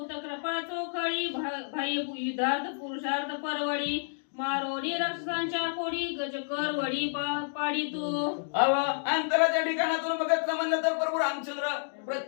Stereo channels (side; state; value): right; silent; digital silence